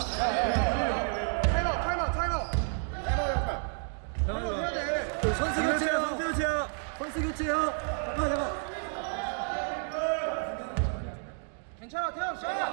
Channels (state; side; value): silent; left; 57 dB below the other